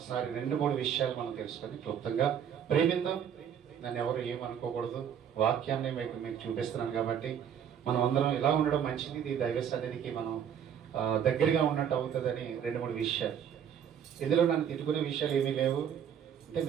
2-3 విషయాలు మనం తెలుసుకొని క్లుప్తంగా ప్రేమిద్దాం. నన్ను ఎవరు ఏమనుకోకూడదు, వాక్యాన్ని మీకు చూపిస్తున్నాను కాబట్టి మనం అందరం ఇలా ఉండడం మంచిది. ఇది దైవ సన్నిధికి మనం దగ్గరగా ఉన్నట్టు అవుతుందని 2-3 విషయాలు. ఇందులో నన్ను తిట్టుకునే విషయాలు ఏమీ లేవు. అంటే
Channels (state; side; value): quieter; left; 8.6 dB